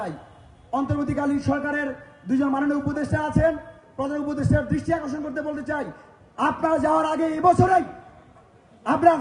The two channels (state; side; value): identical; both; correlation 1.00